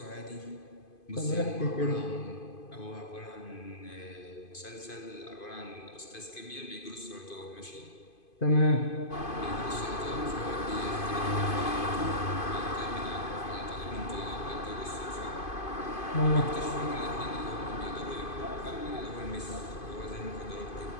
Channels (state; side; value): late; right; 2.5 ms